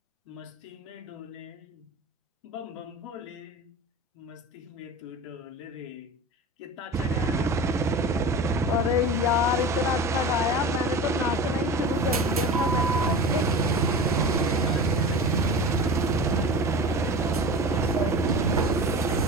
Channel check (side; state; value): both; normal; correlation 0.32